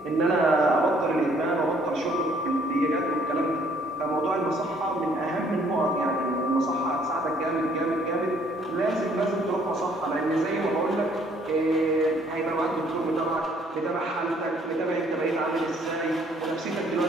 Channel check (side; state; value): both; normal; correlation 0.63